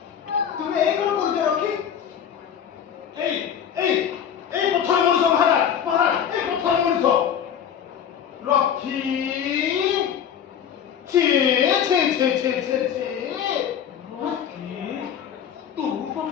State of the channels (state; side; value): quieter; right; 8.7 dB